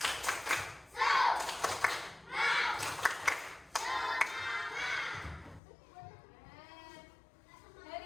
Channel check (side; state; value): right; drops out; at 5.6 s